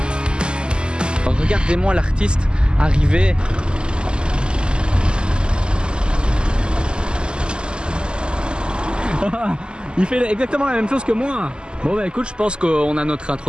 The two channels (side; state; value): left; late; 0.048 ms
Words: Regardez-moi l'artiste arriver. Il fait exactement la même chose que moi. Bon bah écoute, je pense qu'on a notre